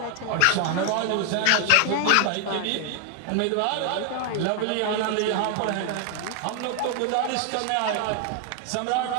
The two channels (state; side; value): different; both; correlation 0.00